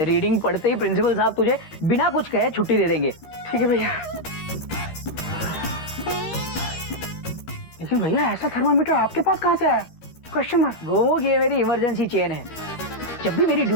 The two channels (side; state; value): right; late; 13 ms